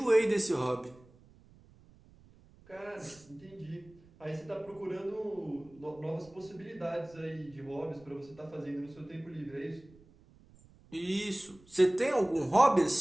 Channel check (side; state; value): right; noise; rumble, 26 dB below the sound